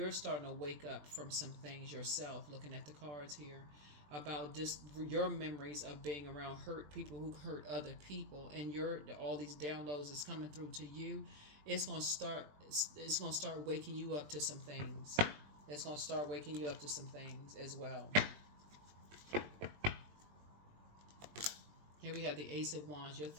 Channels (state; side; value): late; left; 20 ms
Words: starting to wake up from some things yourself, looking at the cards here, about just your memories of being around hurt people who hurt other people, and all these downloads is coming through to you. It's gonna start waking you up to some things. It's gonna start waking you up to some things as well. Here we have the Ace of Wands. Your